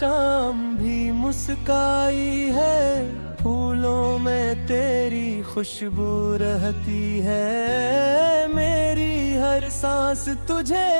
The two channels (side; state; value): both; inverted; correlation -1.00